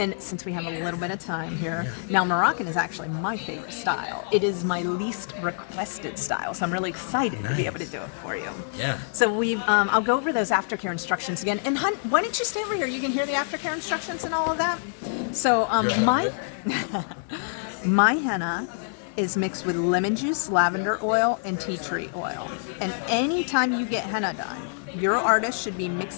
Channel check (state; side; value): silent; right; digital silence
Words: since we have a little bit of time here, now Moroccan is actually my favorite style. It is my least requested style. So I'm really excited to be able to do it for you. Yeah. So I'll go over those aftercare instructions again. And hun, why don't you stay over here? You can hear the aftercare instructions and all of that. So my henna is mixed with lemon juice, lavender oil, and tea tree oil. And anytime you get henna done, your artist should be